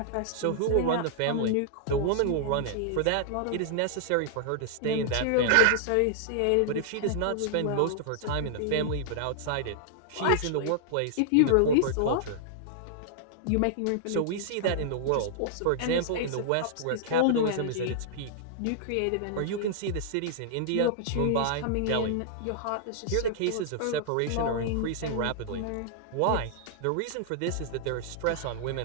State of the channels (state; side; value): different; both; correlation -0.01